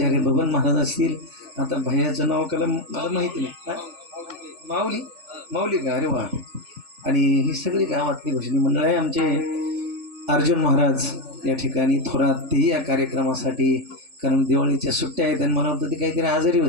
बबन महाराज असतील. आता भैयाचं नाव कला मला माहिती नाही, माऊली माऊली का, अरे वा. आणि ही सगळी गावातली भजनी मंडळ आहे. आमचे अर्जुन महाराज या ठिकाणी थोरात, तेही या कार्यक्रमासाठी, कारण दिवाळीच्या सुट्ट्या आहेत आणि मला वाटतं ती काहीतरी आजारी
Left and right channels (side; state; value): left; late; 3.5 ms